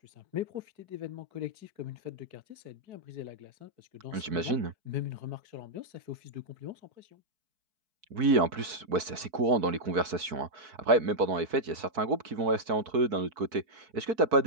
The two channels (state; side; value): late; left; 4.6 ms